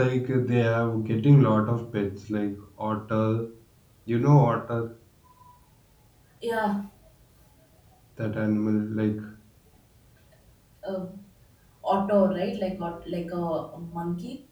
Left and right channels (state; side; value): identical; both; correlation 1.00